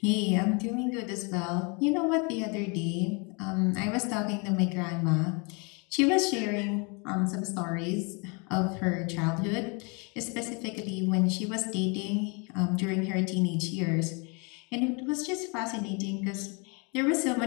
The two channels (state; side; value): quieter; right; 32.5 dB